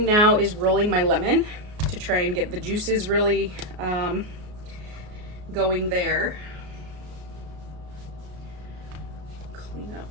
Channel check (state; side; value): late; left; 33 ms